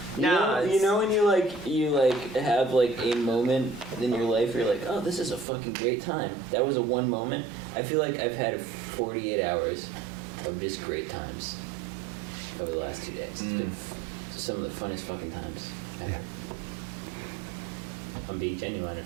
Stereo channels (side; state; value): left; drops out; at 5.5 s